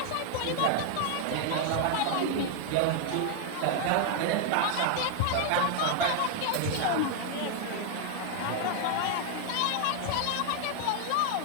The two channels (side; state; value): both; different; correlation 0.00